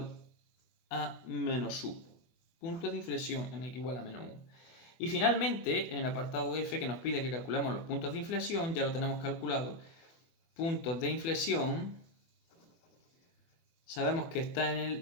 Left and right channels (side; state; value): right; late; 24 ms